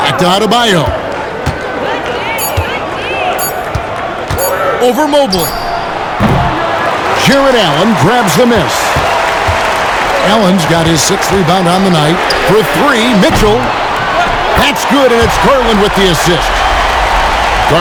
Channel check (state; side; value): identical; both; correlation 1.00